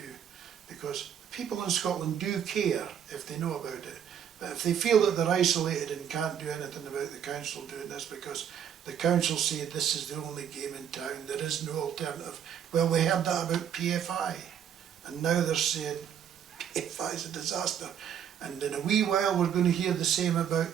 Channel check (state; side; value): quieter; left; 8.9 dB